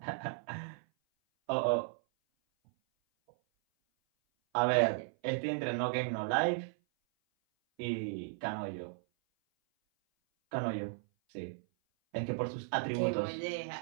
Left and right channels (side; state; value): left; silent; 54 dB below the other